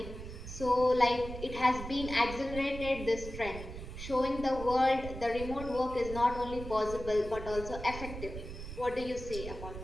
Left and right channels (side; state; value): right; noise; rumble, 10 dB below the sound